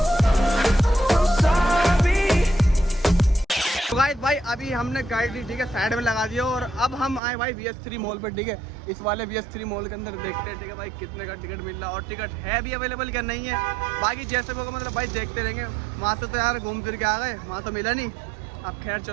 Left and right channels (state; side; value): drops out; left; at 7.2 s